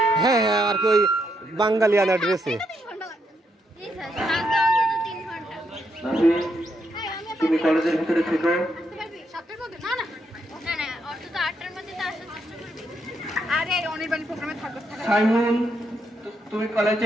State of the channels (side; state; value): both; normal; correlation 0.78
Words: হ্যাঁ হ্যাঁ, আর কি ওই বাঙালিয়ানা ড্রেসে। তুমি কলেজের ভিতরে থেকো। সাইমন তুমি